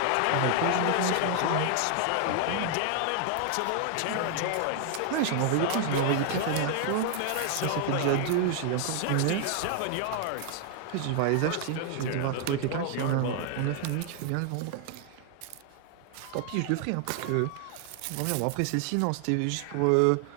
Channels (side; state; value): both; different; correlation 0.00